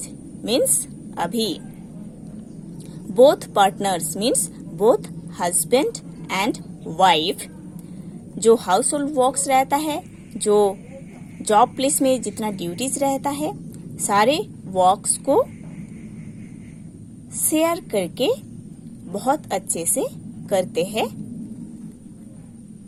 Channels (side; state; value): both; identical; correlation 1.00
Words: मीन्स अभी. Both partners means both husband and wife जो हाउस होल्ड वर्क्स रहता है जो जॉब प्लेस में जितना ड्यूटीज रहता है सारे वर्क्स को शेयर करके बहुत अच्छे से करते हैं